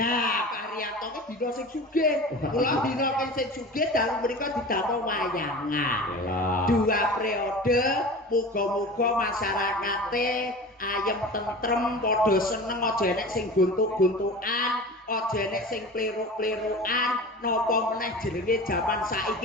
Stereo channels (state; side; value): normal; both; correlation 0.35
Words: Pak Haryanto ki dina sing sugih. Kula dina sing sugih dalu mriku didamel wayangan. Yalah. 2 periode, muga-muga masyarakate ayem tentrem, padha seneng, aja enek sing guntuk-guntukan, aja enek sing pliruk-plirukan, napa meneh jenenge jaman